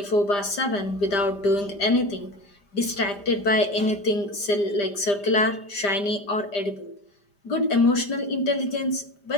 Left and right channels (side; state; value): right; late; 5.0 ms